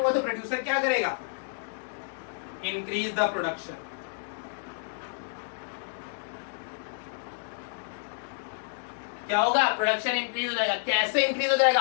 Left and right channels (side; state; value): right; silent; digital silence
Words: तो प्रोड्यूसर क्या करेगा, इंक्रीज द प्रोडक्शन। क्या होगा, प्रोडक्शन इंक्रीज हो जाएगा। कैसे इंक्रीज हो